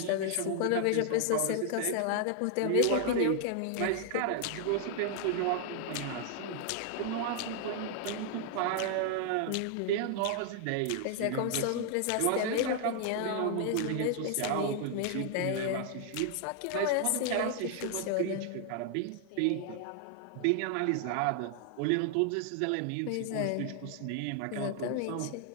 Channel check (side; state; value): both; different; correlation 0.00